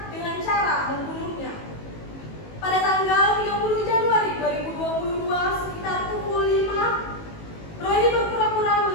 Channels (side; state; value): right; late; 19 ms